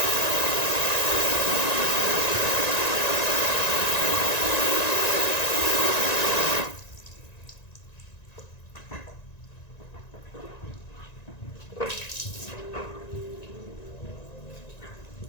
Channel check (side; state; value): right; late; 1.9 ms